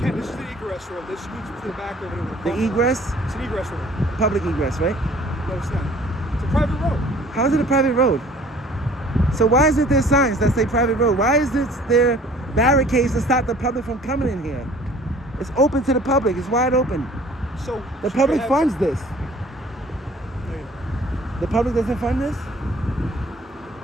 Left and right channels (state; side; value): normal; both; correlation 0.52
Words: This is the egress road. This leads to the back over there. the egress, It's an egress road. public egress, right? No, it's not. It's a private road. How is it a private road? So why isn't there signs that say private road? Why is there barricades to stop the public from coming in here? It's open to the public. It's wide open. So The should public we have- funds this. Wait, The public doesn't fund this?